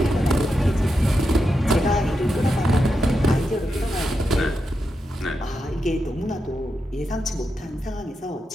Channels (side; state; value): both; normal; correlation 0.86